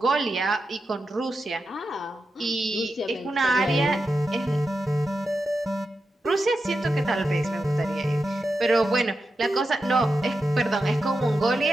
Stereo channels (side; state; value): both; normal; correlation 0.89